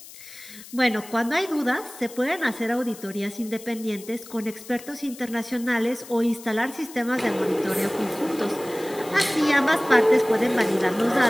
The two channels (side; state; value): left; noise; hiss, 17 dB below the sound